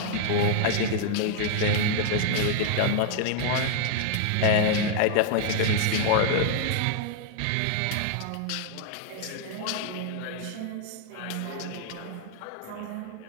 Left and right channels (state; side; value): different; both; correlation 0.00